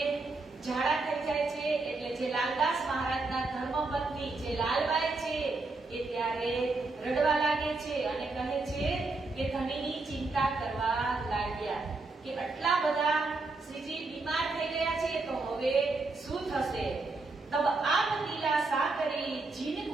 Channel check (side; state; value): left; quieter; 3.5 dB